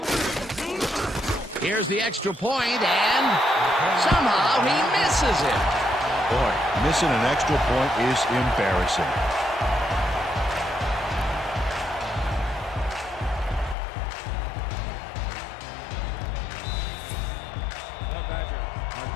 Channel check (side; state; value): right; drops out; at 13.8 s